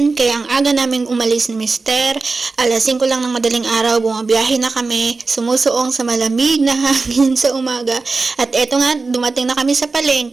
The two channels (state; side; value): quieter; left; 3.9 dB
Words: kaya ang aga naming umalis ni Mister. Alas 5 lang ng madaling araw, bumabiyahe na kami, sumusuong sa malamig na hangin sa umaga. At eto nga, dumating na kami sa